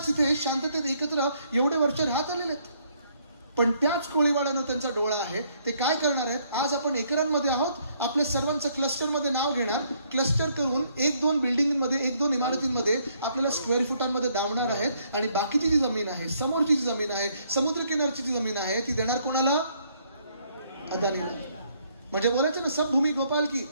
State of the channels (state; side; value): inverted; both; correlation -0.68